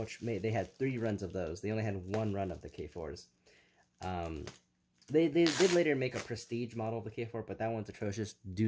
had 3 runs of those. They only had 1 run of the K4s. They did later make a prestige model of the K4, but that one's atrocious.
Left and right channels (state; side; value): identical; both; correlation 1.00